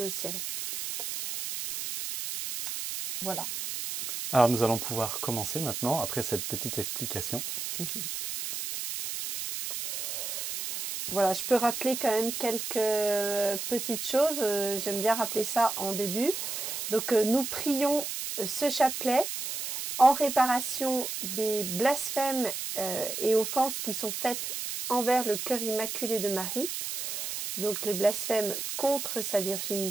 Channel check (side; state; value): right; noise; hiss, 4 dB below the sound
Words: au ciel. Voilà. Alors nous allons pouvoir commencer maintenant, après cette petite explication. Voilà, je peux rappeler quand même quelques petites choses, j'aime bien rappeler ça en début. Donc nous prions ce chapelet en réparation des blasphèmes et offenses qui sont faites envers le cœur immaculé de Marie. Donc les blasphèmes contre sa